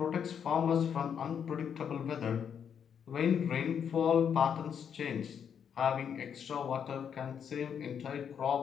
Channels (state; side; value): quieter; right; 7.8 dB